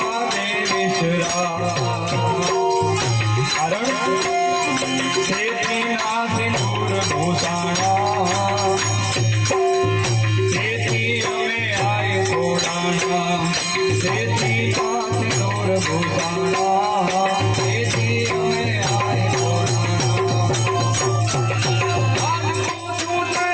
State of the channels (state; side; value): identical; both; correlation 1.00